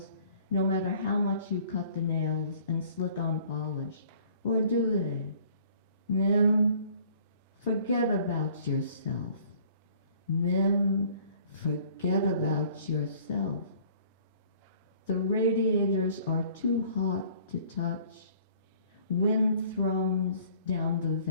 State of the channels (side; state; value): both; inverted; correlation -0.55